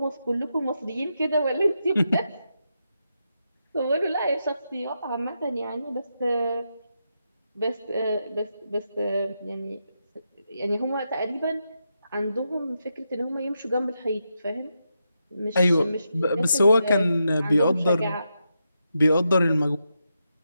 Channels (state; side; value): inverted; both; correlation -0.85